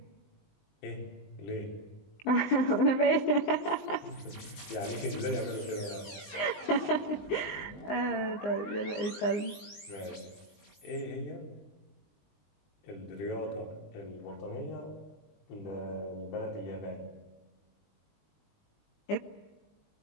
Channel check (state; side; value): late; right; 20 ms